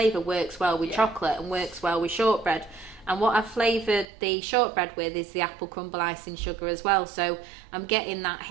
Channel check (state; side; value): drops out; left; at 4.0 s